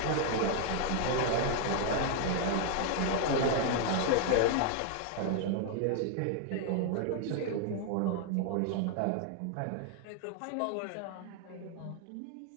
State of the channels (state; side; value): different; both; correlation 0.00